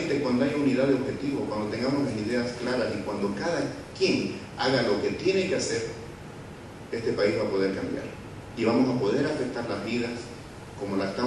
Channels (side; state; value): both; identical; correlation 1.00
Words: cuando haya unidad de objetivo, cuando tengamos las ideas claras y cuando cada quien haga lo que tiene que hacer, este país va a poder cambiar. Y vamos a poder afectar las vidas como la